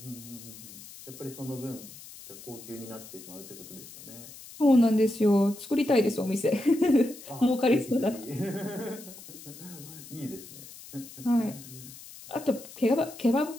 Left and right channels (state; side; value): noise; left; hiss, 16 dB below the sound